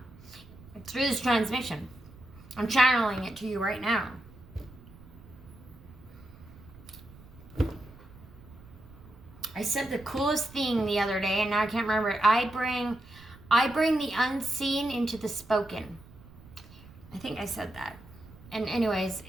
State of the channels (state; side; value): noise; right; rumble, 20 dB below the sound